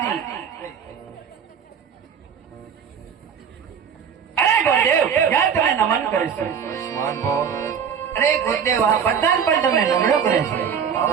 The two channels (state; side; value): quieter; left; 7.4 dB